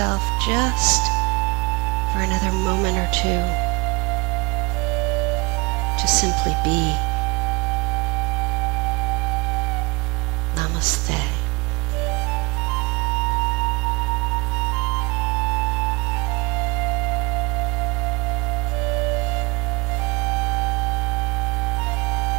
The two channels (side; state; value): left; quieter; 25.9 dB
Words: just for another moment or two to simply be. Namaste.